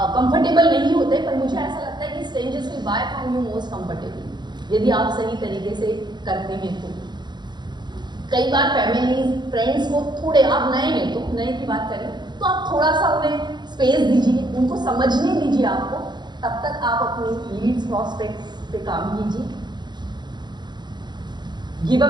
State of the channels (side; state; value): left; late; 0.21 ms